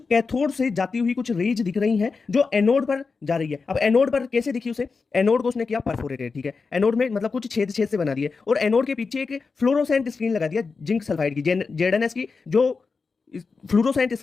कैथोड से जाती हुई कुछ रेज दिख रही हैं जो एनोड पर जा रही है। अब एनोड पर कैसे दिखी उसे? एनोड को उसने किया परफोरेटेड, ठीक है। एनोड में मतलब कुछ छेद छेद से बना दिए और एनोड के पीछे एक फ्लोरोसेंट स्क्रीन लगा दिया जिंक सल्फाइड की, जेडएनएस की। जो फ्लोरोसेंट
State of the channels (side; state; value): right; quieter; 4.7 dB